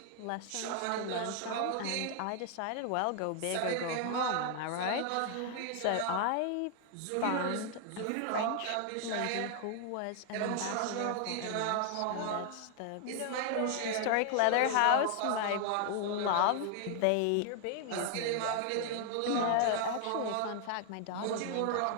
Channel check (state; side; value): different; both; correlation 0.00